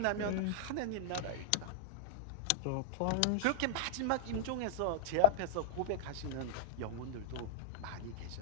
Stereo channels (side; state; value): both; different; correlation -0.03